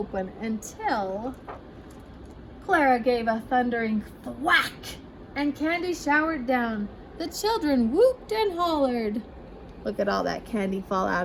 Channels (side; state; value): both; identical; correlation 1.00